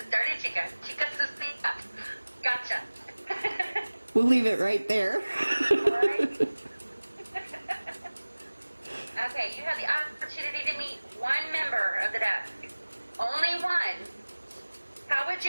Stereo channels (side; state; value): both; inverted; correlation -1.00